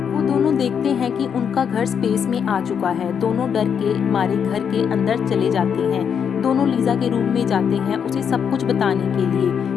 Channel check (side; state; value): right; quieter; 7.5 dB